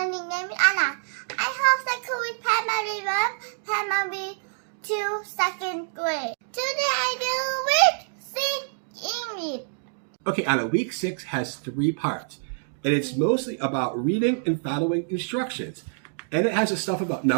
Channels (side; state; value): left; silent; digital silence